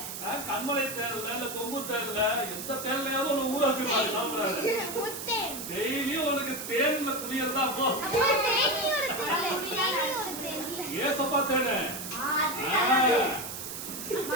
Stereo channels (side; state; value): right; noise; hiss, 7 dB below the sound